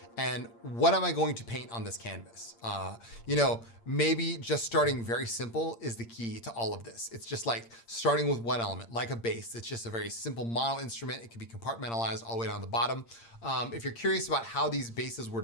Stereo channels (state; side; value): late; right; 8.7 ms